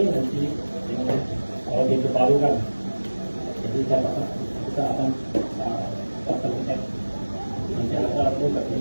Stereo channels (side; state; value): both; inverted; correlation -1.00